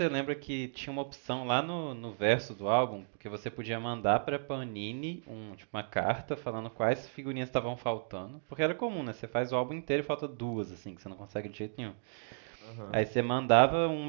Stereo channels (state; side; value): silent; left; digital silence